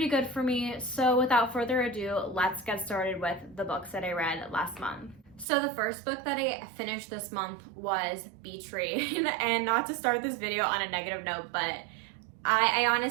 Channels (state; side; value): drops out; left; at 5.5 s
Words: good for me. So without further ado, let's get started with the books that I read last month. So the first book that I finished this month was Beach Read. And not to start this video on a negative note, but I